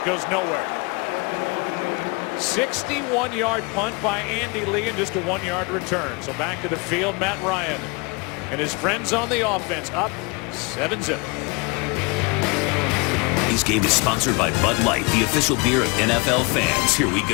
nowhere. 61-yard punt by Andy Lee and just a 1-yard return. So back to the field, Matt Ryan and his friends on the offense, up 7-0. This game is sponsored by Bud Light, the official beer of NFL fans. Here we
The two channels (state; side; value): quieter; right; 28.7 dB